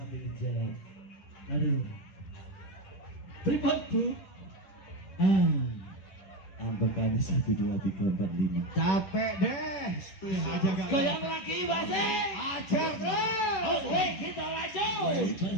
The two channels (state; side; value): late; right; 10 ms